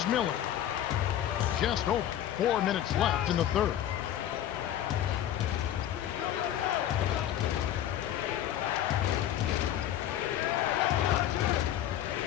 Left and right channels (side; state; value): right; quieter; 11.4 dB